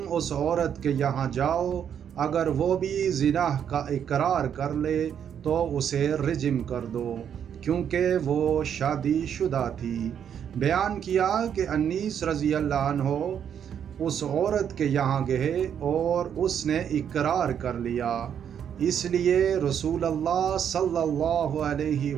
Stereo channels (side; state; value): left; quieter; 8.6 dB